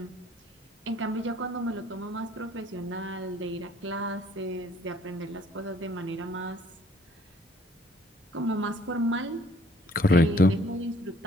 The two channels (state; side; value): normal; both; correlation 0.59